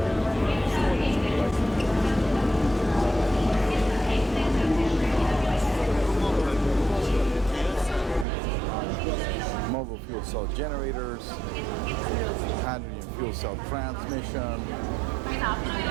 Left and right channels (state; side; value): drops out; left; at 8.2 s